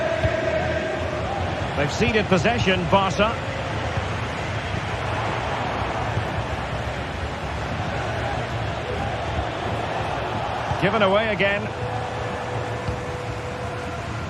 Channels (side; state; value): both; identical; correlation 1.00